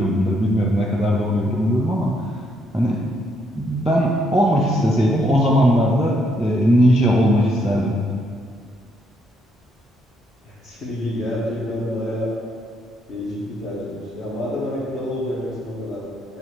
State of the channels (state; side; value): normal; both; correlation 0.74